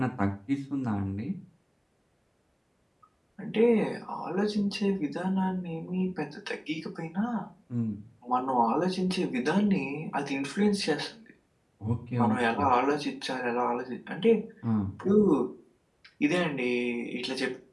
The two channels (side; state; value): both; identical; correlation 1.00